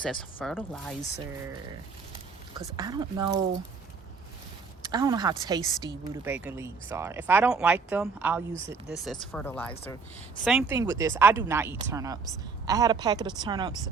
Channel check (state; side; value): quieter; left; 4.9 dB